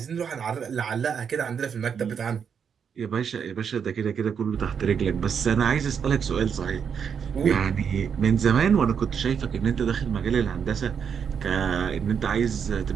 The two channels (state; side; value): quieter; left; 7.1 dB